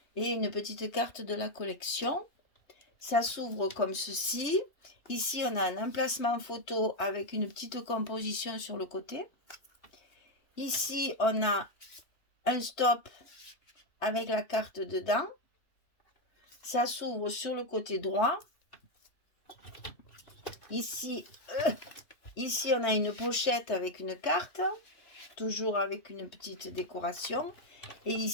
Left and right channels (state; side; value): late; right; 3.2 ms